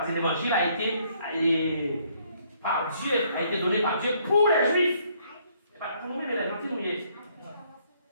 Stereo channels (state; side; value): inverted; both; correlation -0.67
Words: que l'évangile a été donné par Dieu pour les juifs. Pas pour nous-mêmes, les gentils, nous y est.